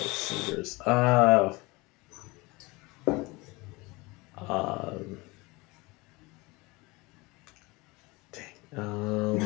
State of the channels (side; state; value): right; quieter; 24.0 dB